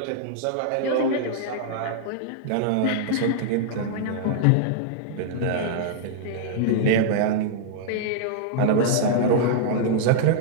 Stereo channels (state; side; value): different; both; correlation -0.01